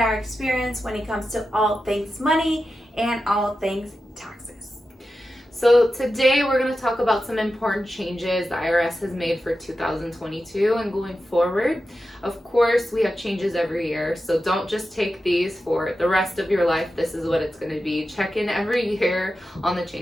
our experience when it comes to all things money and all things taxes. So today we're going to talk about some important changes the IRS has made for 2022 and going forward. Of course, we have changes every year, so don't just take these for the rest of your life. This is what it's going to be. Check in every year on the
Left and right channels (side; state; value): both; normal; correlation 0.91